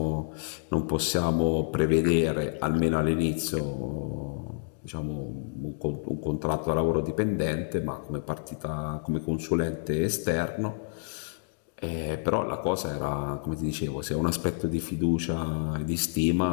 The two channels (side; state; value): right; silent; digital silence